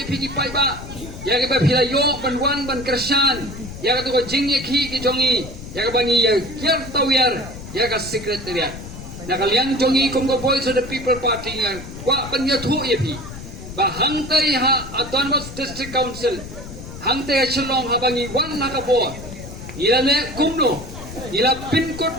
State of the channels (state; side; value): noise; left; rumble, 12 dB below the sound